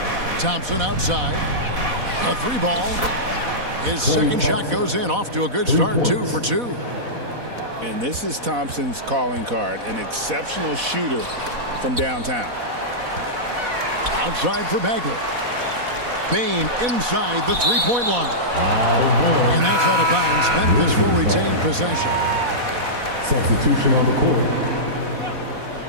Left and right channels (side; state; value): left; late; 4.1 ms